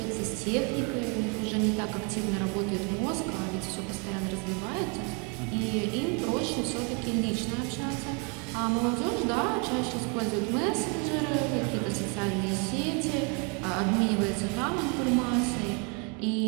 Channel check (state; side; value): quieter; left; 34.7 dB